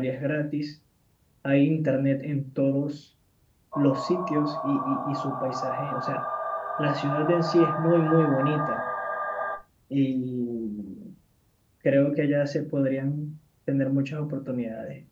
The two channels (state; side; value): identical; both; correlation 1.00